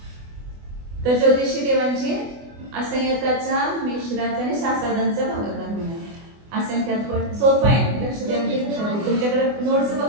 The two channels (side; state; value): left; late; 24 ms